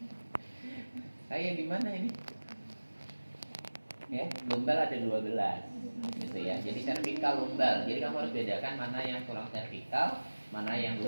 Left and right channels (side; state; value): both; inverted; correlation -1.00